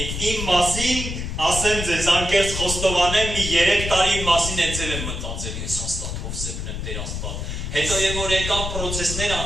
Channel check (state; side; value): noise; left; rumble, 5 dB below the sound